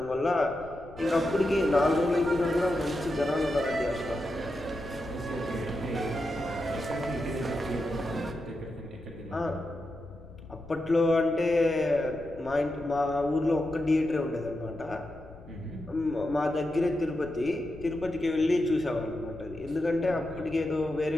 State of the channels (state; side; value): noise; left; rumble, 18 dB below the sound